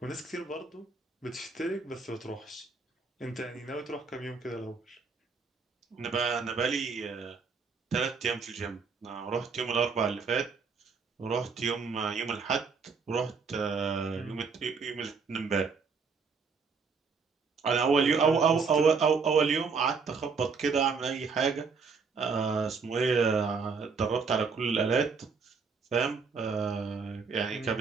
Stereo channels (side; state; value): left; quieter; 5.1 dB